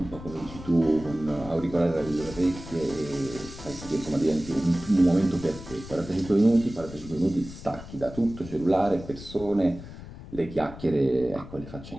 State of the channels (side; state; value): left; noise; rumble, 14 dB below the sound